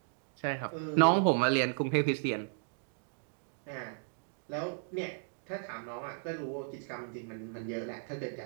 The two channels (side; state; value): left; silent; digital silence